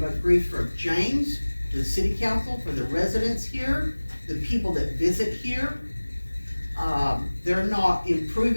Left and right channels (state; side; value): inverted; both; correlation -1.00